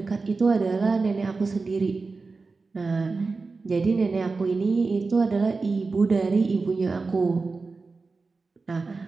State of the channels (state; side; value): quieter; left; 4.1 dB